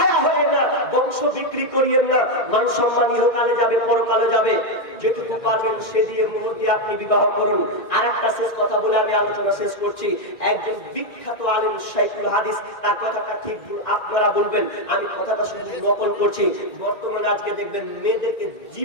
হয়েন না, বংশ বিক্রি করিয়েন না। মান সম্মান ইহকালে যাবে, পরকালে যাবে। যেটুকু পারবেন সে দিয়ে মুহূর্তে দিয়ে আপনি বিবাহ করুন। আর একটা শেষ কথা বলে আমি আলোচনা শেষ করছি। একজন বিখ্যাত আলেম শাইখুল হাদিস, তার কথাটা ঠিক আপনারা বলবেন, আমি কথাটা শুধু নকল করছি। বর্তমানে আজকে দেখবেন মেয়েদেরকে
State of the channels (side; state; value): right; late; 1.9 ms